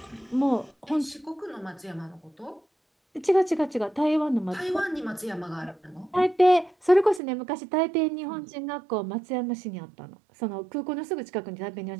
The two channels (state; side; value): drops out; left; at 7.2 s